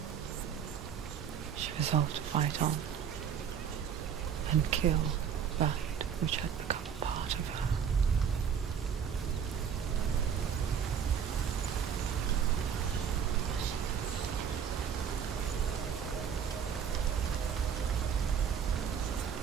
She resolved to fight on and kill that which had become a part of her.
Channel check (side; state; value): left; quieter; 7.8 dB